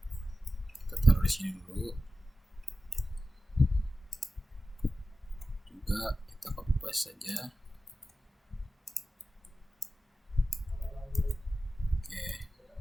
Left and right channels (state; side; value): normal; both; correlation 0.93